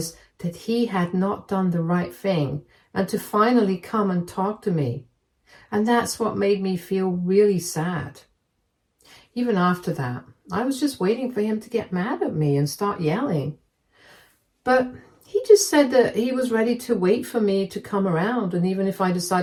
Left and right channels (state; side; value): identical; both; correlation 1.00